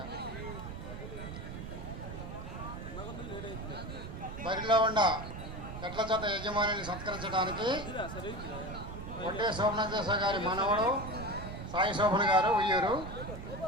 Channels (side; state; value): right; noise; rumble, 9 dB below the sound